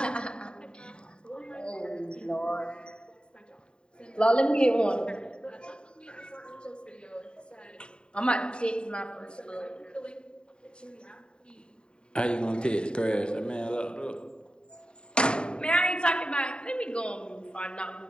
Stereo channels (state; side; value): late; right; 0.051 ms